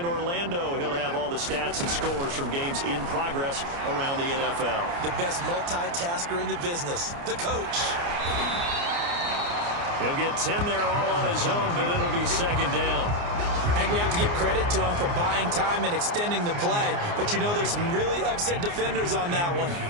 Orlando. He'll have all the stats and scores from games in progress around the NFL. The best multitasker in the business, the coach. He'll get 10 there all on his own, but it'll be second down. And we have to give credit to him for buying time and extending the play. But you know, there's some really upset defenders on that one.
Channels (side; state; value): left; late; 29 ms